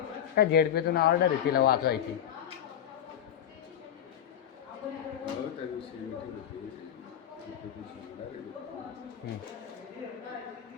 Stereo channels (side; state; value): right; quieter; 9.9 dB